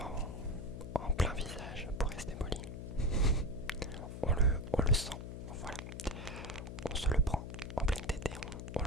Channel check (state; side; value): noise; left; hum, 8 dB below the sound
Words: en plein visage, pour rester poli, on le sent, voilà. On se le prend en pleine tête et on